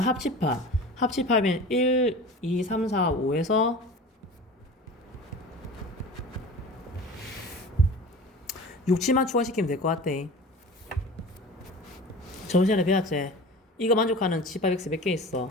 합집합이면 1, 2, 3, 4, 5에서 6, 7만 추가시키면 될 것 같대. 저번 시간에 배웠지? 이거 만족하는 집합 X 몇 개 있어?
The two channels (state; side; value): normal; both; correlation 0.37